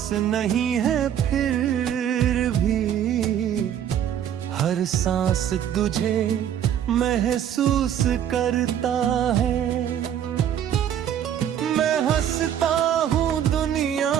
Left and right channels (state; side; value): quieter; left; 9.9 dB